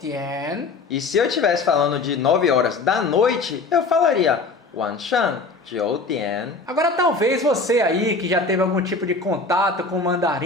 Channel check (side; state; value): right; quieter; 3.8 dB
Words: E se eu estivesse falando de 9 horas da noite, eu falaria 晚上9点. Agora talvez você aí que já teve algum tipo de contato com o